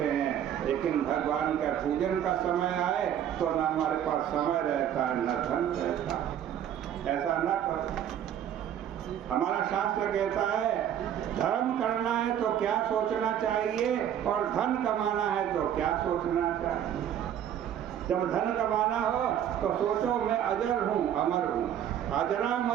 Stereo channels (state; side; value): quieter; left; 10.0 dB